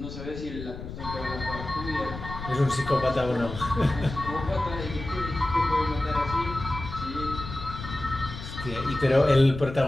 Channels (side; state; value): left; noise; rumble, 10 dB below the sound